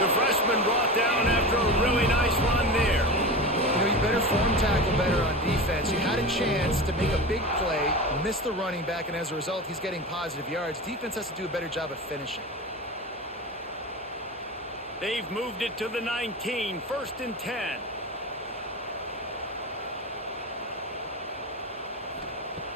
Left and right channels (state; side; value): normal; both; correlation 0.27